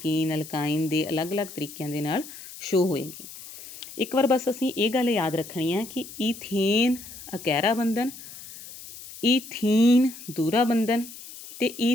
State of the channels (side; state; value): left; noise; hiss, 15 dB below the sound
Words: ਅਲਕਾਈਨ ਦੇ ਅਲੱਗ-ਅਲੱਗ ਤਰੀਕਿਆਂ ਦੇ ਨਾਲ ਸ਼ੋ ਹੋਏਗੀ। ਇੱਕ ਵਾਰ ਬਸ ਅਸੀਂ ਇਹ ਗੱਲ ਯਾਦ ਰੱਖਣੀ ਹੈ ਕਿ ਈਥੇਨ ਇਕਹਿਰਾ ਬੰਧਨ, ਈਥੀਨ ਦੂਹਰਾ ਬੰਧਨ, ਅਤੇ